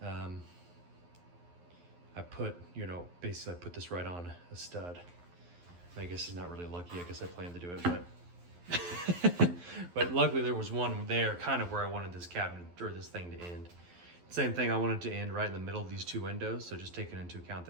I put, basically I put this right on a stud. I guess it's not really lucky. I guess I planned to do it, but but luckily there was one there kind of where I wanted this cabinet or this thing to end. Same thing, I wanted to end right in the middle of these two windows. So just taking into account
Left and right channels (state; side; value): late; left; 11 ms